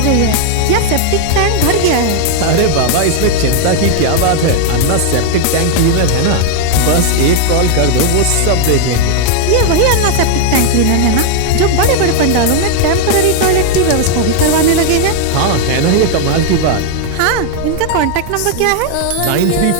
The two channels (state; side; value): different; both; correlation 0.00